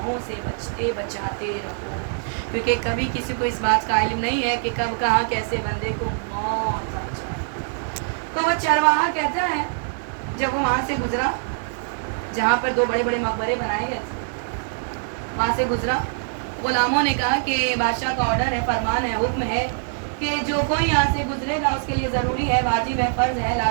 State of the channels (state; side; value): silent; left; digital silence